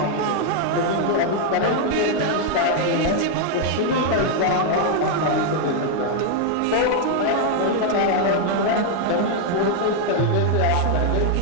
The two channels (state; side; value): different; both; correlation 0.00